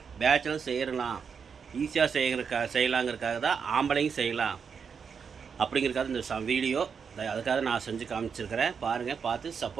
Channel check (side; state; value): left; quieter; 6.3 dB